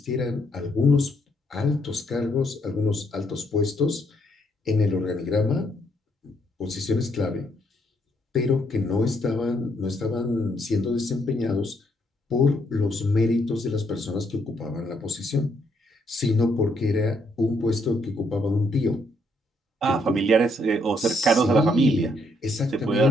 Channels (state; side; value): normal; both; correlation 0.72